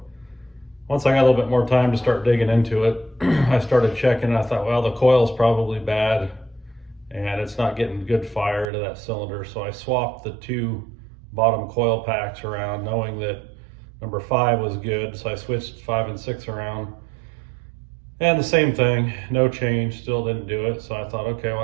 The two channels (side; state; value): left; drops out; at 8.7 s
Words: once I got a little bit more time to start digging into it, I started checking. I thought, well, the coil's probably bad and it's not getting good fire to that cylinder. So I swapped the two bottom coil packs around, knowing that number 5 was good. So I switched 5 and 6 around. And the same thing, no change, still didn't do it. So I thought, okay, well,